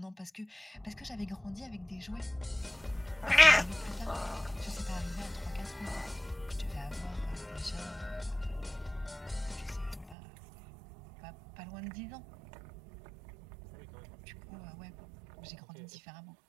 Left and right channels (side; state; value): left; drops out; at 10.2 s